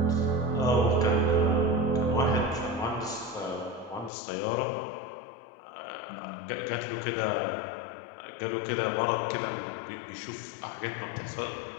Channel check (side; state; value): right; drops out; at 4.1 s